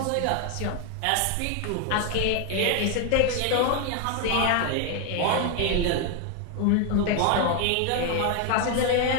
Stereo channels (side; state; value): both; different; correlation 0.01